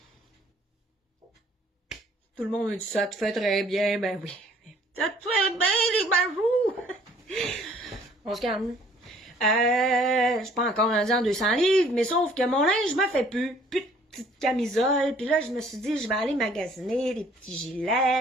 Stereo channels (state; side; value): normal; both; correlation 0.58